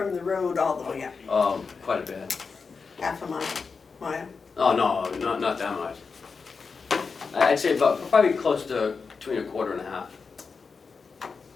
the road all the way up, Quite a bit. half a mile. Oh, no, not that much. I'd say probably close to between a quarter and a half.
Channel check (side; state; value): right; quieter; 5.0 dB